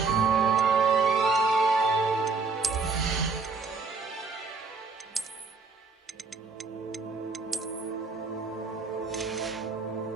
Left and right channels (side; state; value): left; quieter; 4.4 dB